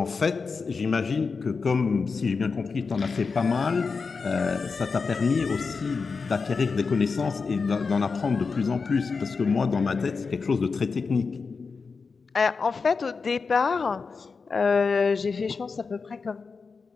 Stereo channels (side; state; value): right; quieter; 4.8 dB